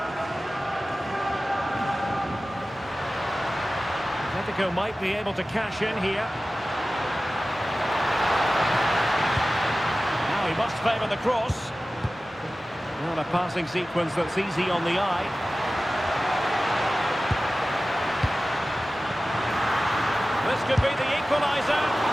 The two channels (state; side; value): normal; both; correlation 0.96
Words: Atletico might be able to cash in here. Now he must favour the cross. Well, a passing sequence that's easy on the eye. This could be the equaliser.